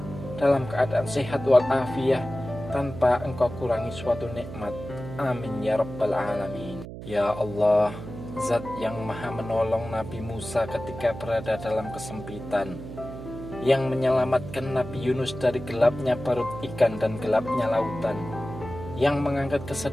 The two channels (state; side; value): noise; right; hum, 11 dB below the sound